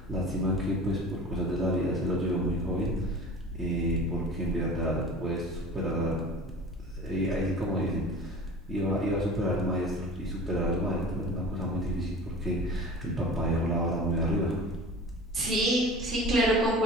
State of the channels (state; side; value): normal; both; correlation 0.39